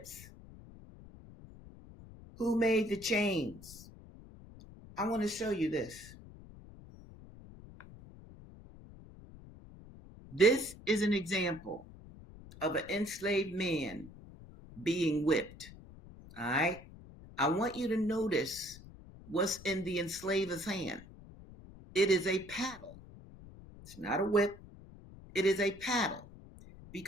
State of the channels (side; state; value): left; noise; rumble, 18 dB below the sound